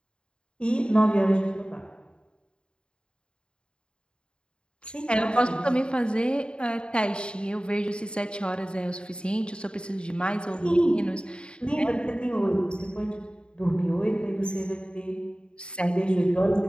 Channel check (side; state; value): right; late; 0.053 ms